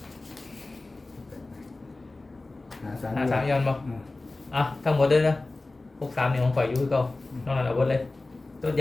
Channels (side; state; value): right; quieter; 3.1 dB